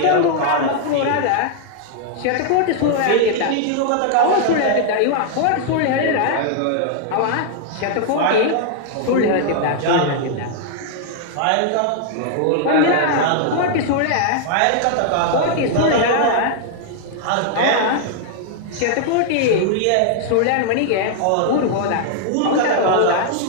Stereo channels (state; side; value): different; both; correlation 0.00